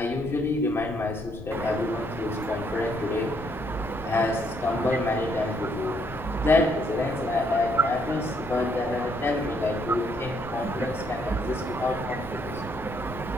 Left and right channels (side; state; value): left; noise; rumble, 12 dB below the sound